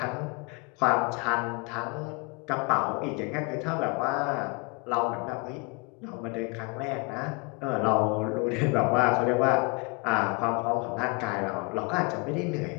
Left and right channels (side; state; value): right; quieter; 29.7 dB